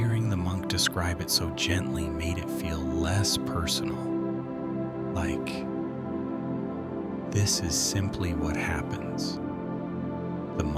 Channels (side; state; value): both; identical; correlation 1.00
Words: the monk describe it so gently made it feel less personal, like, this is simply what happens. The